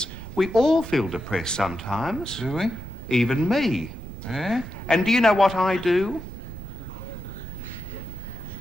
We all feel depressed sometimes. Do we? Even me. Yeah? And do you know what I do?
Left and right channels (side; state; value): right; noise; rumble, 12 dB below the sound